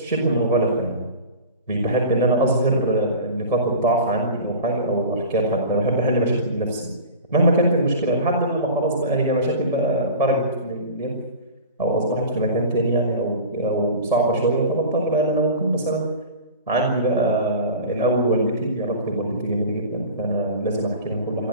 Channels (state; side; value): inverted; both; correlation -0.37